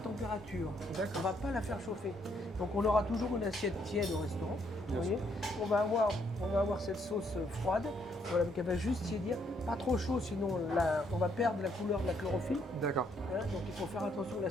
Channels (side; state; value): both; normal; correlation 0.71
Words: On ne va pas la faire chauffer. Donc on aura toujours une assiette tiède au restaurant. Vous voyez, on va avoir cette sauce froide, voilà, donc elle va juste tiédir, pas trop chaud, sinon on va perdre la couleur de la chlorophylle. D'accord. Hein, donc il faut faire attention que